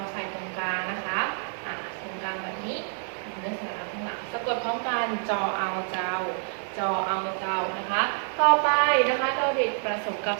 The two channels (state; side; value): silent; left; 59 dB below the other